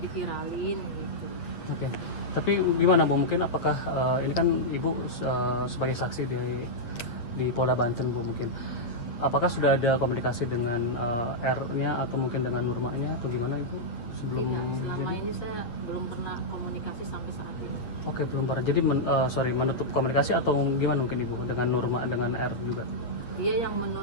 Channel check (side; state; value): right; late; 8.3 ms